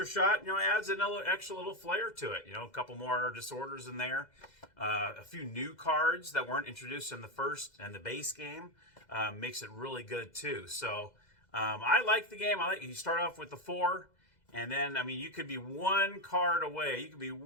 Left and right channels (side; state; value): right; late; 2.0 ms